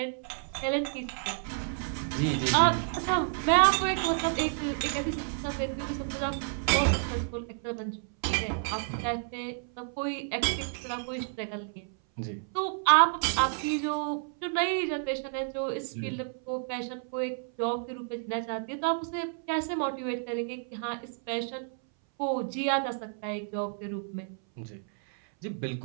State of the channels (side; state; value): left; silent; 57 dB below the other